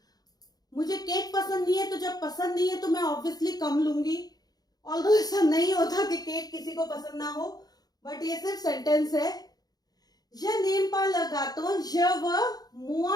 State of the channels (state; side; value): late; right; 0.19 ms